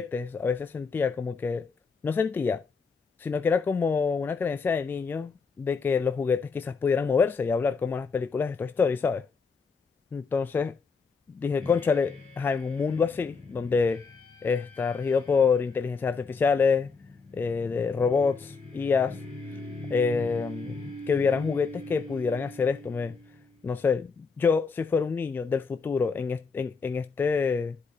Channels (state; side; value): quieter; right; 5.0 dB